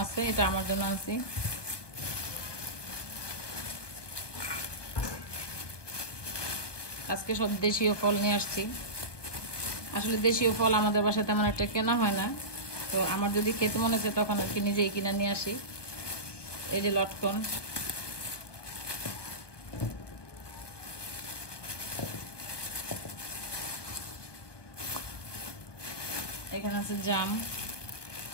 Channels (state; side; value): late; right; 1.2 ms